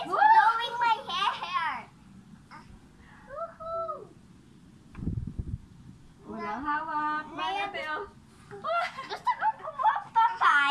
blowing my hair. Woohoo! Walang hawak. Bye, ate, oh. Gusto ko kumuha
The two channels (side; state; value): both; identical; correlation 1.00